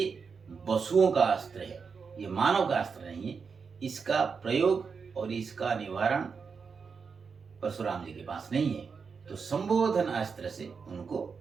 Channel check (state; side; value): quieter; left; 5.5 dB